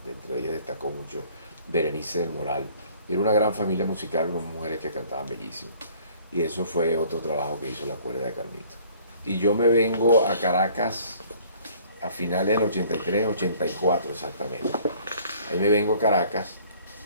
entre ellas destacó mucho Berenice del Moral, y era una gran familia musical, con mujeres que cantaban bellísimo, y eso fue otro trabajo que hizo la cuerda de Carmito. Y yo me vengo a Caracas a finales del 83, 84 exactamente. Ahí me vengo a Caracas,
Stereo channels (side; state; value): both; inverted; correlation -0.55